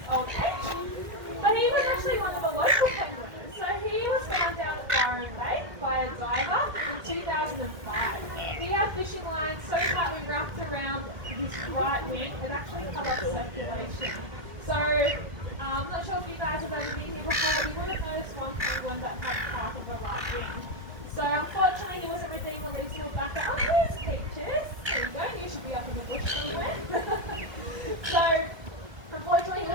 old age. But he was actually one of the local penguins. So he was found down at Byron Bay by a diver in 2005. He had fishing lines so tightly wrapped around his right wing, it actually cut off circulation. So I'm not sure if you guys have ever been here before, but you would have noticed one penguin that had half of a right wing. So unfortunately he wasn't redeemed released to back up. Oh, here's Peaches.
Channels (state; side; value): late; left; 1.7 ms